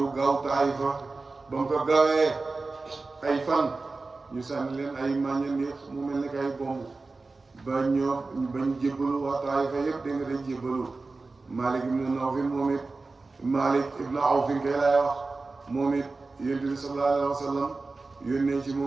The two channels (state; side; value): quieter; left; 3.7 dB